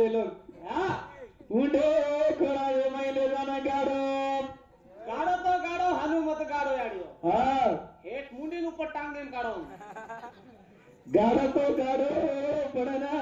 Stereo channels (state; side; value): identical; both; correlation 1.00